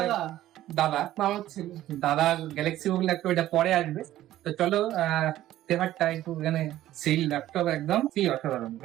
দাদা মামার ছেলে। দাদা গ্যালাক্সি বুক ল্যাপটপ, এটা পরে আসবে। তো চলো তেহারটা একটু এখানে সেই ল্যাপটপ একদম কি অসাধারণ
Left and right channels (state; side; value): quieter; left; 13.8 dB